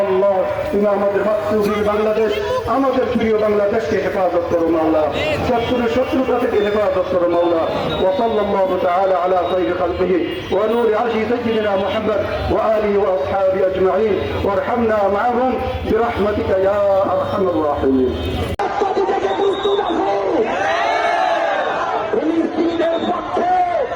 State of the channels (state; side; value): identical; both; correlation 1.00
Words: আল্লাহ তুমি আমাদের মাতৃভূমি বাংলাদেশ, আমাদের প্রিয় বাংলাদেশকে হেফাজত করো মাওলা। শত্রুর শত্রুতা থেকে হেফাজত করো মাওলা। ওয়া সাল্লাল্লাহু তাআলা আলা খায়রি খালকিহি ওয়া নূরি আরশি সাইয়্যিদিনা মুহাম্মদ ওয়া আলিহি ওয়া আসহাবিহি আজমাইন ওয়ারহামনা মা'আহুম বিরহমাতিকা ইয়া আরহামার রাহিমিন। ফিলিস্তিনিদের পক্ষে